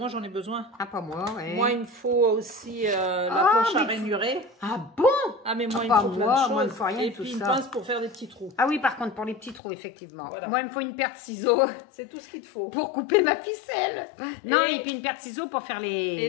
j'en ai besoin. Ah, pas moi, ouais. Moi, il me faut aussi la planche à ranurer. Ah bon? Ah, mais moi, il me faut plein de choses. Moi, il me faut rien. Et puis une pince pour faire des petits trous. Ah oui, par contre, pour les petits trous, effectivement. Voilà. Moi, il me faut une paire de ciseaux. C'est tout ce qu'il te faut. Pour couper ma ficelle. Non, et puis une paire de ciseaux pour faire les... Et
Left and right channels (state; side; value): drops out; right; at 9.6 s